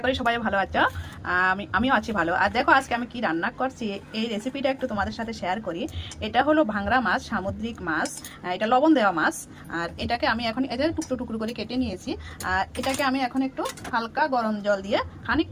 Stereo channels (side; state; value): both; identical; correlation 1.00